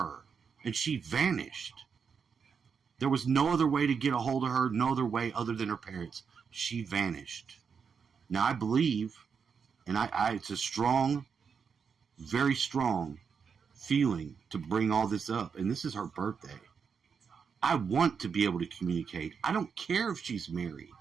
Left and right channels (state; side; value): quieter; left; 6.2 dB